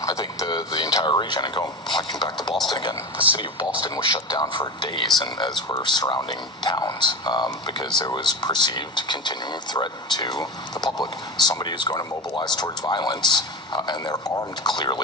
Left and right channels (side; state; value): both; normal; correlation 0.25